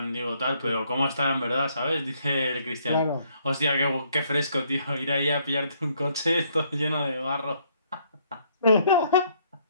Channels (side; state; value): both; inverted; correlation -0.68